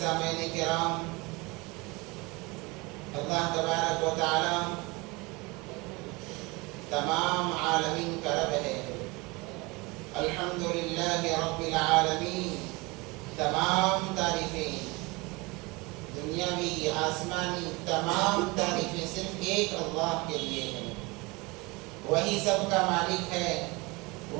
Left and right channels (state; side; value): quieter; left; 25.1 dB